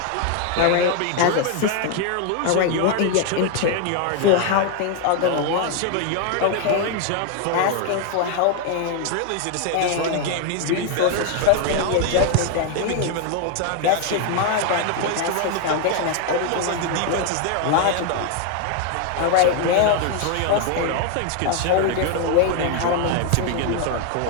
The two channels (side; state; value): both; different; correlation 0.01